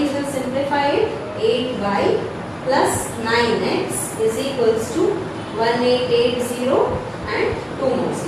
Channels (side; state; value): both; identical; correlation 1.00